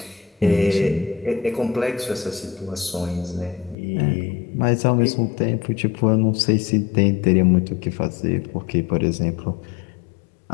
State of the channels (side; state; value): right; drops out; at 3.8 s